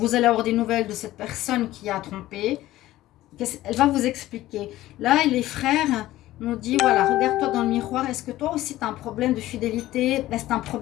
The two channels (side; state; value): right; quieter; 15.6 dB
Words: allez avoir des nouvelles de cette personne qui a trompé. Elle va vous expliquer. Là, les frères nous disent, voilà, regarde-toi dans le miroir. Est-ce que toi aussi, tu as un problème de fidélité? Est-ce que tu as un